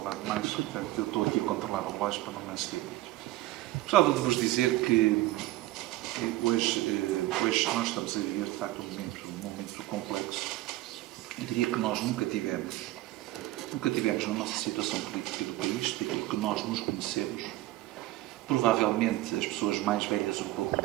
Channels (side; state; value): left; quieter; 17.3 dB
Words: demais, portanto, eu estou aqui a controlar o relógio para não me exceder muito. Gostava de vos dizer que hoje nós estamos a viver, de facto, um momento complexo. Eu diria que nós nunca tivemos na nossa situação política do país, daquilo que nós nos conhecemos. Provavelmente as pessoas mais velhas um pouco do